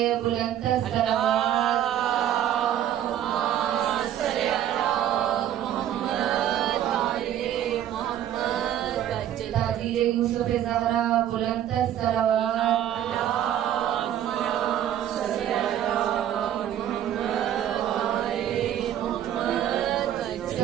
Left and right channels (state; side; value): quieter; left; 11.1 dB